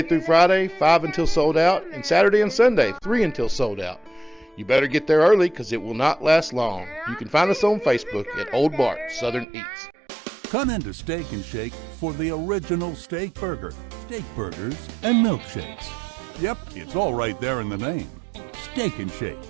through Friday, 5 until sold out, and Saturday and Sunday, 3 until sold out. You better get there early because it will not last long. You can find us on Facebook at Old Bart Southern Eats. Come into Steak and Shake for the original steak burger, steak burgers, and milkshakes. Yep, it's all right there in the name. Steak and Shake.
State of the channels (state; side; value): drops out; left; at 9.5 s